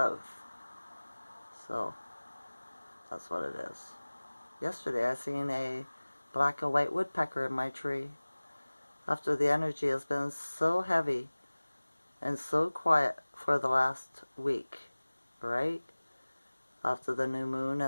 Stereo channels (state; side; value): inverted; both; correlation -1.00